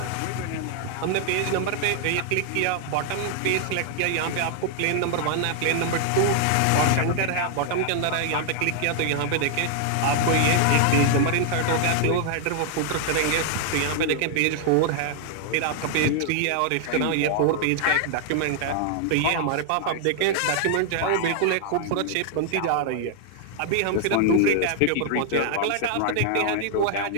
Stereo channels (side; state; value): both; different; correlation 0.00